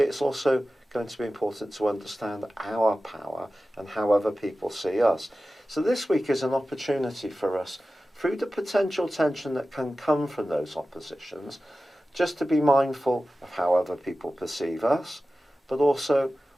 it's also going to be important to understand our power and how other people see us. So this week is an opportunity for us, through the potential tension that can come from those oppositions, just to be mindful of how other people perceive us, but also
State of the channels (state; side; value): normal; both; correlation 0.95